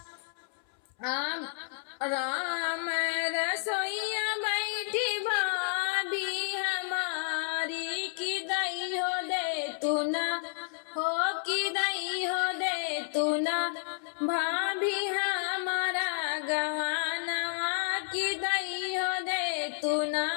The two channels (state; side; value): silent; right; 57 dB below the other